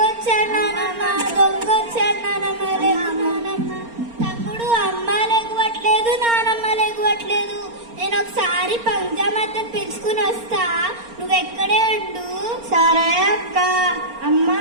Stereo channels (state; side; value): late; left; 4.3 ms